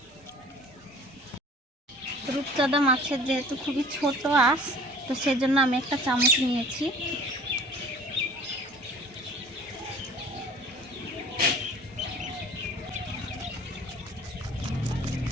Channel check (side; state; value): both; normal; correlation 0.48